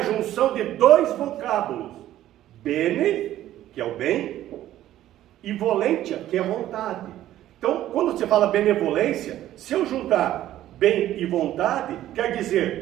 junção de dois vocábulos: Bene, que é o bem, e volentia, que é a vontade. Então, quando você fala benevolência, se eu juntar bem e vontade, quer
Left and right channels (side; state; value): left; quieter; 13.2 dB